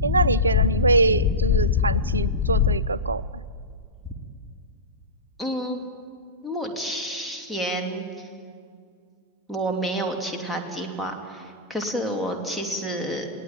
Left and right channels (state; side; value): normal; both; correlation -0.18